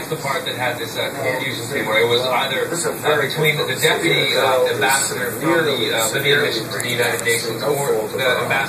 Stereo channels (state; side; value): identical; both; correlation 1.00